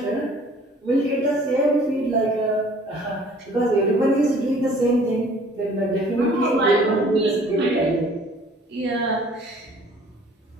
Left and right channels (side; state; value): both; normal; correlation 0.53